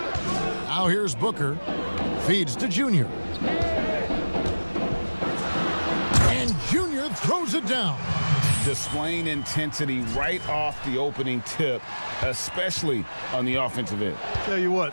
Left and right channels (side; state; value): both; inverted; correlation -1.00